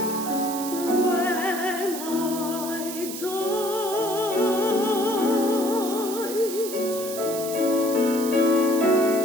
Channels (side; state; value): right; noise; hiss, 9 dB below the sound